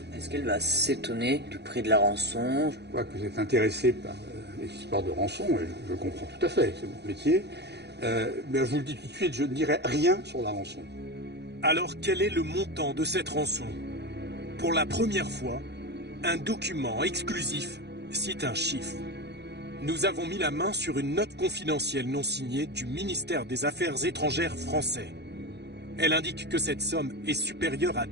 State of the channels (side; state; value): left; late; 0.49 ms